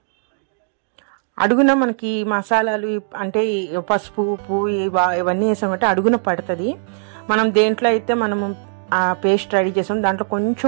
అడుగున మనకి మసాలాలు అంటే పసుపు ఉప్పు ఇవన్నీ వేసామంటే అడుగున పడుతుంది. మనం దేంట్లో అయితే మనము ఆ పేస్ట్ రెడీ చేసాం దాంట్లో కొంచెం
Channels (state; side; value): silent; left; digital silence